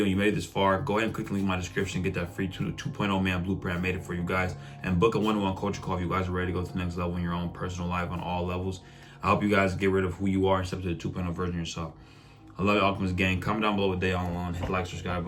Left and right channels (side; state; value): both; identical; correlation 1.00